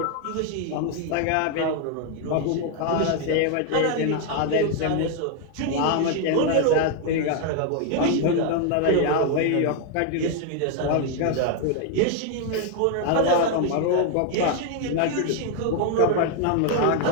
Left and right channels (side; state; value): both; different; correlation 0.00